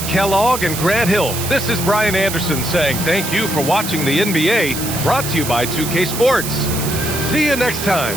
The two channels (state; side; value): noise; right; hiss, 6 dB below the sound